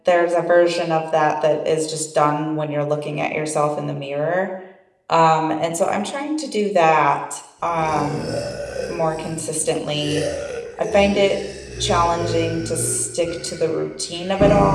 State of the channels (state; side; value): identical; both; correlation 1.00